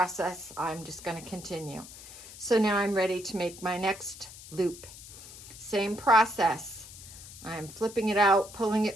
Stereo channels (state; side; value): noise; left; hiss, 16 dB below the sound